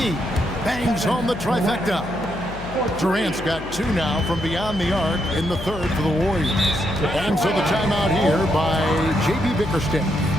Bangs home the trifecta. Durant's got 2 now from beyond the arc in the 3rd for the Warriors. And so the timeout here by J.B. Bickerstaff.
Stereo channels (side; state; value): left; noise; hum, 13 dB below the sound